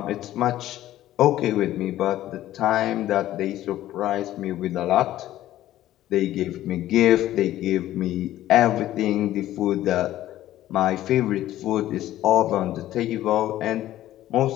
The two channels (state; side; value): quieter; right; 13.9 dB